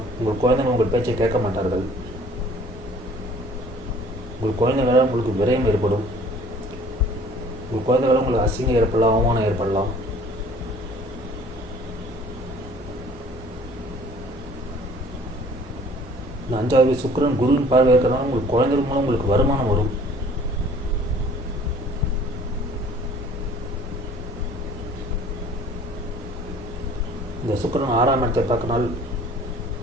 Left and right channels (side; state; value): both; normal; correlation 0.52